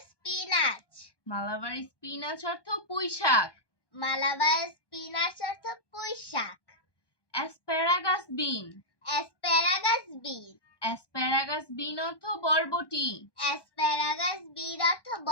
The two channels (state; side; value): late; right; 1.2 ms